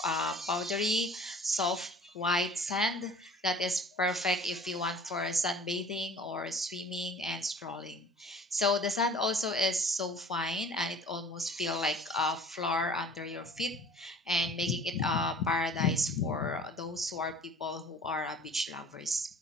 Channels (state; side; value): normal; both; correlation 0.46